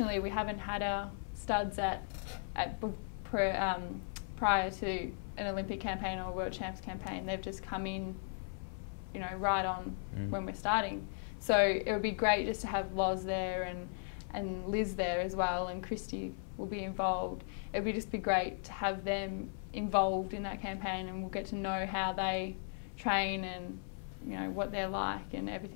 we haven't had our studs prior to an Olympic campaign or a World Champs campaign. They've just come in, you know, right on when we're starting. So it would be great just to have Loz there and Liz there as well, and Christy will be involved, it'd be just be great to have them involved in that campaign, and we'll get to know how they train and, you know, what they're like and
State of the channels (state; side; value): silent; right; 53 dB below the other